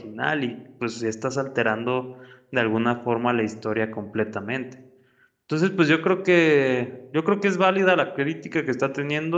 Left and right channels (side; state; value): both; identical; correlation 1.00